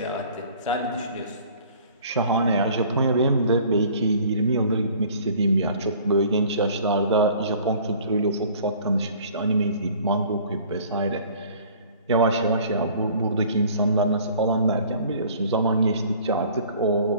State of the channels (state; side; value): inverted; both; correlation -0.52